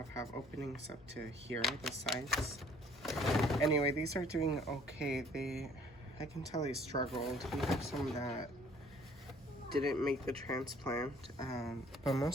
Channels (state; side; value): normal; both; correlation 0.58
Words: openings up to here, the sides. Anyway, these are doing okay. I can tell they struggled. We have some that didn't make the transplant, but